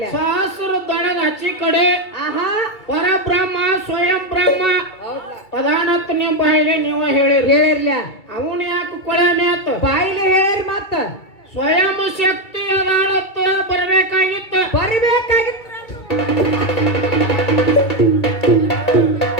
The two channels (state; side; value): late; right; 2.3 ms